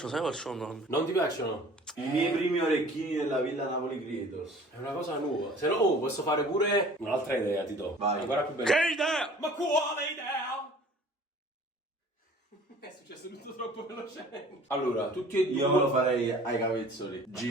sai qual sono? Non ti piacciono? I miei primi orecchini della Villa Napoli Creators. È una cosa nuova. Se no, posso fare pure un'altra idea, ti do. Vai. Ancora più bella. Che idea? Ma quale idea? È successo tutto troppo velocemente. Allora, tutti e due. Io me lo farei ai capezzoli.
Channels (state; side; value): normal; both; correlation 0.48